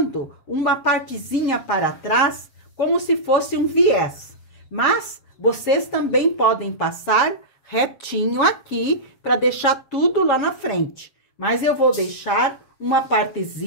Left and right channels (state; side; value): late; right; 7.4 ms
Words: uma partezinha para trás, como se fosse um viés. Mas vocês também podem passar retinho aqui, para deixar tudo lá na frente. Mas eu vou deixar uma